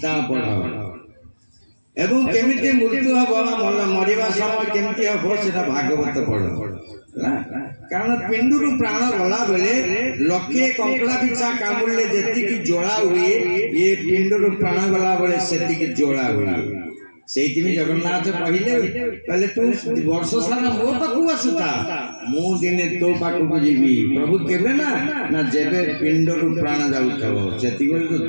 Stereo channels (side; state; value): both; inverted; correlation -1.00